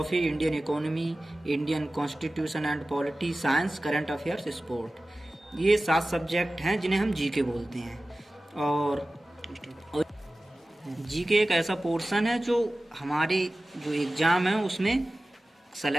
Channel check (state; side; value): normal; both; correlation 0.96